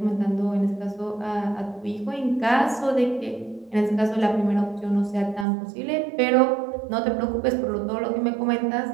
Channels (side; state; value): left; drops out; at 5.5 s